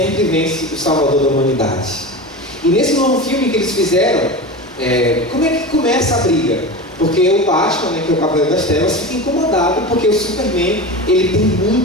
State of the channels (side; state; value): both; normal; correlation 0.27